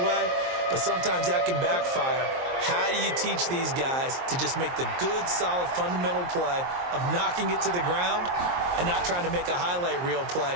But sometimes that can backfire. How do you teach these guys to just make the good, solid, fundamental play of knocking it to the ground and not trying to make a highlight reel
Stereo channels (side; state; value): left; late; 23 ms